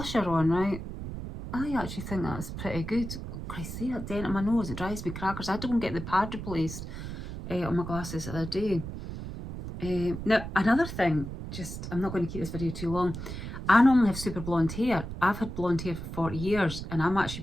on, right? I actually think that's pretty good. I see that dent on my nose, it drives me crackers. I had to go and get the pad replaced on my glasses the other day. Now, another thing, I'm not going to keep this video too long. I normally have super blonde hair. I've had blonde hair for 40 years and I'm actually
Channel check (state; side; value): noise; right; rumble, 8 dB below the sound